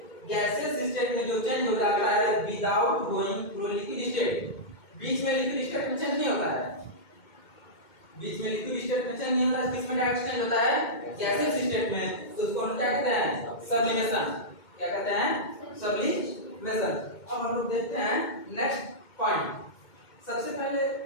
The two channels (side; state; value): right; late; 2.2 ms